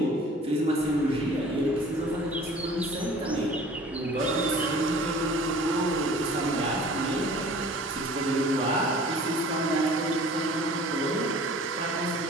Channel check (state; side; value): normal; both; correlation 0.47